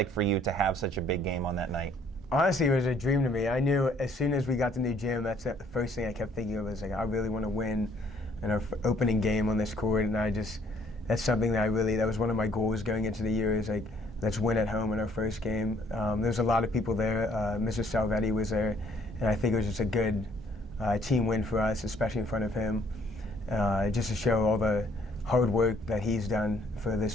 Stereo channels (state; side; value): normal; both; correlation 0.63